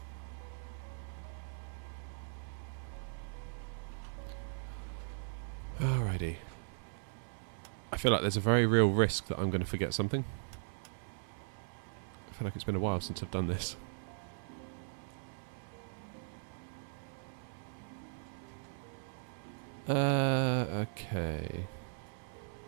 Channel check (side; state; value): left; silent; 52 dB below the other